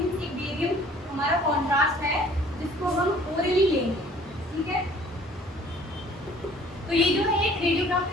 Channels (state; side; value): normal; both; correlation 0.53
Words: एक बेरियम हमारा कॉन्ट्रास्ट है जिसको हम ओरली लेंगे, ठीक है। तो ये जो है एक